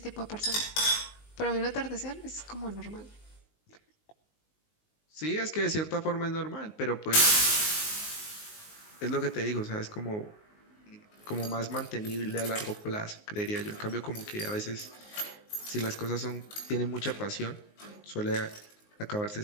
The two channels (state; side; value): late; right; 19 ms